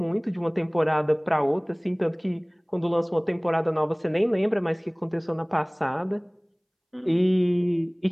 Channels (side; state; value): both; identical; correlation 1.00